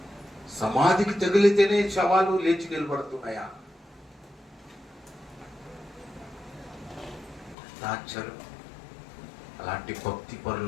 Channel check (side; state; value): right; drops out; at 7.6 s